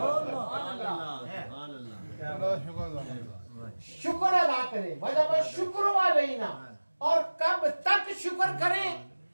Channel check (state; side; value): inverted; both; correlation -1.00